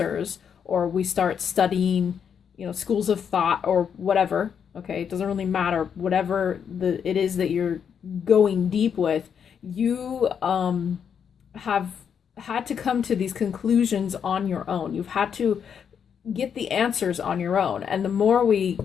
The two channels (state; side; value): quieter; right; 7.5 dB